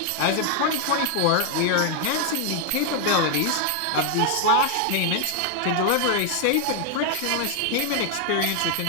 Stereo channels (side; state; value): both; different; correlation 0.00